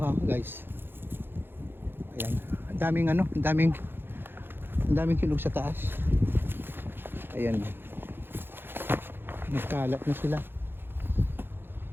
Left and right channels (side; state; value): left; late; 0.10 ms